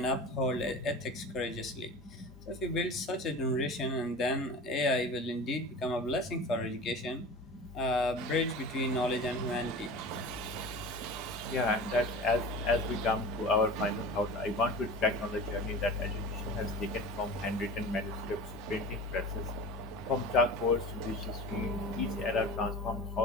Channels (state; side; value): normal; both; correlation 0.35